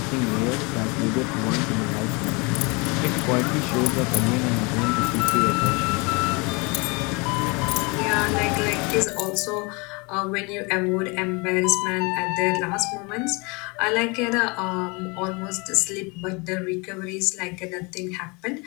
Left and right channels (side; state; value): right; quieter; 28.8 dB